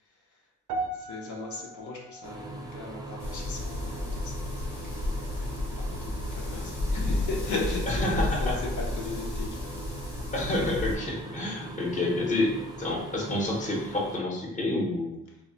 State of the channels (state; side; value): normal; both; correlation 0.56